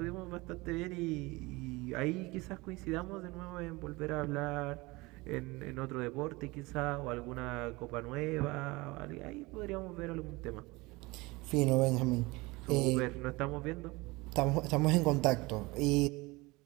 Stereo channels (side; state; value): left; quieter; 23.0 dB